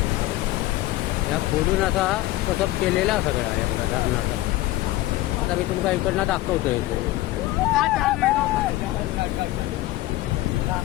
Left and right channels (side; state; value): right; quieter; 17.2 dB